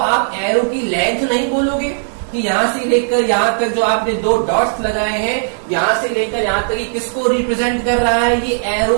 एरो की लेंथ नहीं बोलोगे कि यहां से लेकर यहां तक जो आपने 2 डॉट्स लगाए हैं, यहां से लेकर यहां तक ये किसको रिप्रेजेंट कर रहा है, ये एरो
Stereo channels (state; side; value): silent; left; digital silence